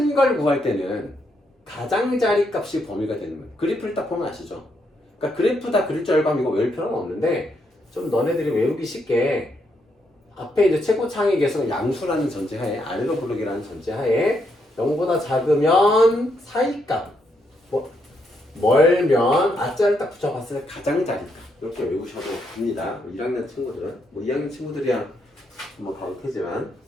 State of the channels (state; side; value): normal; both; correlation 0.77